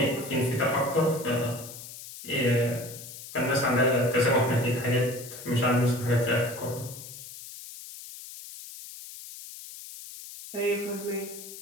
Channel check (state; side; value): noise; left; hiss, 13 dB below the sound